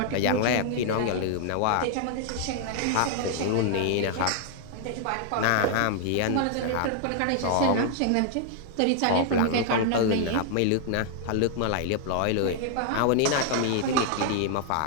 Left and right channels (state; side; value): different; both; correlation -0.01